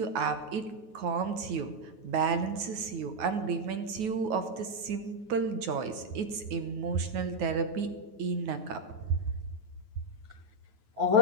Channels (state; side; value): late; left; 9.4 ms